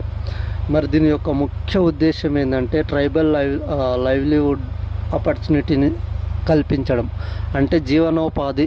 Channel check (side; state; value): both; identical; correlation 1.00